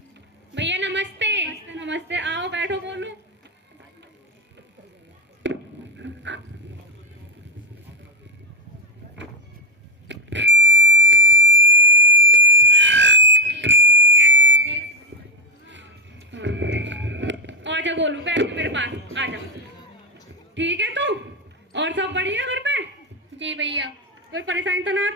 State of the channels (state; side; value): normal; both; correlation 0.04